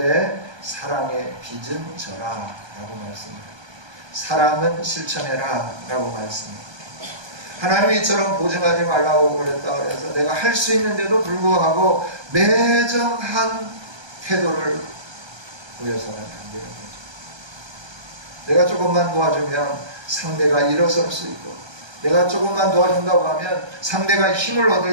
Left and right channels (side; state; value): left; late; 1.2 ms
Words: 사랑의 빚은 져라 라고 말씀해요. 사랑은 실천해라 라고 말씀해요. 하나님이 이처럼 보증하지 말라고 그랬다 그래서 내가 할 수 있는데도 불구하고 매정한 태도를 보여서는 안 되는 거죠. 내가 조금만 도와주면 상대가 일어설 수 있고 내가 조금만 도와준다고 하면 상대가 힘을